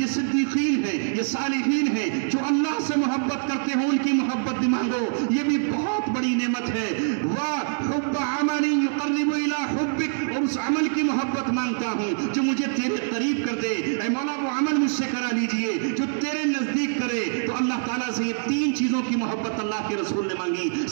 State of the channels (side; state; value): left; silent; digital silence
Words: صدیقین ہیں، یہ صالحین ہیں جو اللہ سے محبت کرتے ہیں، ان کی محبت بھی مانگو، یہ بھی بہت بڑی نعمت ہے۔ وَحُبَّ عَمَلٍ يُقَرِّبُ إِلَىٰ حُبِّكَ، اور اس عمل کی محبت مانگتا ہوں جو مجھے تیرے قریب کر دے۔ اے مولا وہ عمل مجھ سے کرا لیجئے جو تیرے نزدیک کرے۔ تو اللہ تعالیٰ سے یہ تین چیزوں کی محبت اللہ کے رسول نے مانگی۔